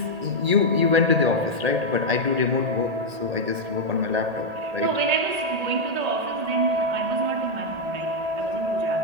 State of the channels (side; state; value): left; late; 1.8 ms